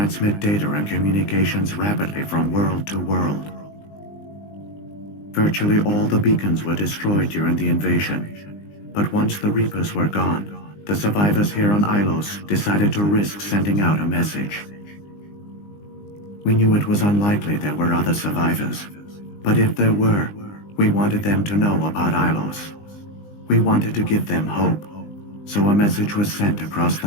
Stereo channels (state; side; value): late; right; 20 ms